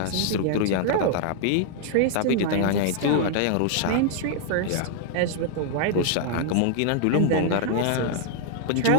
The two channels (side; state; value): both; different; correlation 0.00